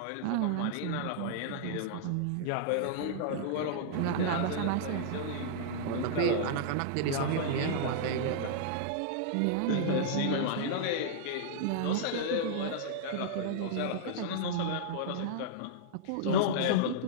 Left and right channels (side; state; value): both; different; correlation -0.01